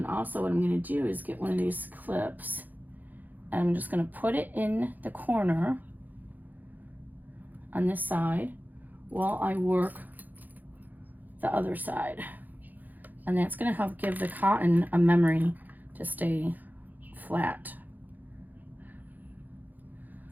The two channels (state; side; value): late; left; 0.084 ms